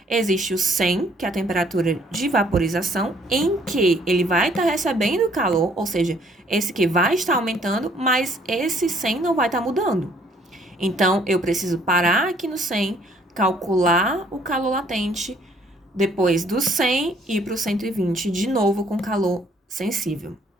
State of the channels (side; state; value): both; normal; correlation 0.62